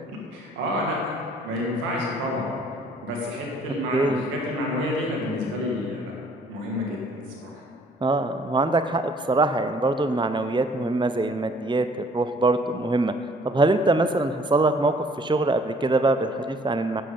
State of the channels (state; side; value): normal; both; correlation 0.58